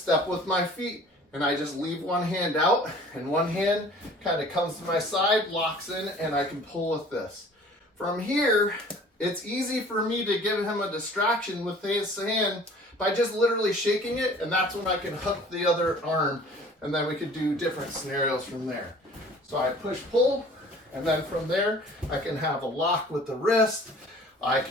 with my feet, and I just leave one hand out, and one hand kind of comes to my side, locks in, and I can pull with this. From here, it's easy for me to give him a distraction with his hand by just literally shaking it, and that's when I can hook the other arm, and then we could do different scenarios from there. So I push-pull, and then from there, I can have a lock with the wrist. I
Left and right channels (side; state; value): both; normal; correlation 0.49